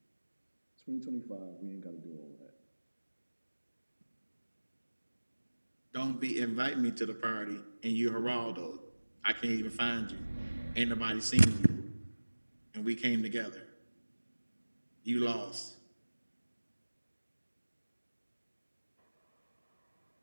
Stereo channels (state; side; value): inverted; both; correlation -1.00